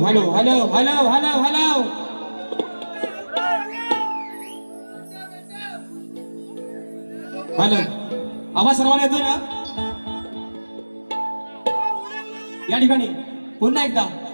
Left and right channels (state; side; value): inverted; both; correlation -1.00